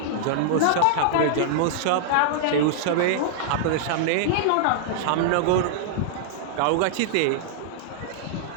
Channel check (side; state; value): both; different; correlation -0.01